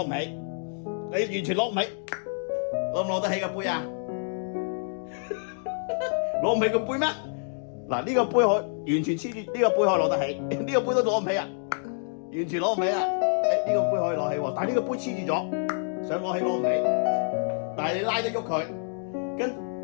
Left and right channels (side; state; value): right; silent; digital silence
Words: 唔起，你完全攞唔起，攞唔攞得起個杯啊？攞唔起個杯咩？嗱，呢個杯可完全黐住，呢個杯可以攞得起，呢個杯都攞唔起啊，完全攞唔起啊！呢個杯可以攞起喎，但係呢個杯黐住咗，想攞起攞唔起，但係你拉得喐佢，